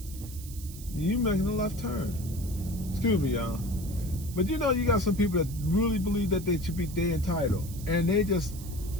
You making a left turn. Excuse me, y'all. But you know, you got some people that really believe that they entitled, and they just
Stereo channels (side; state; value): right; noise; hiss, 16 dB below the sound